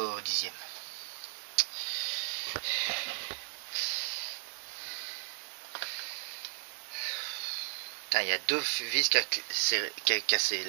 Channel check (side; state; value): left; silent; 55 dB below the other